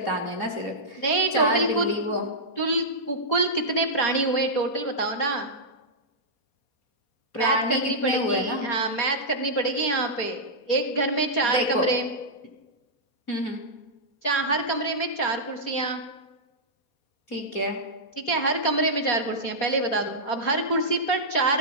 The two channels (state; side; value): late; right; 4.2 ms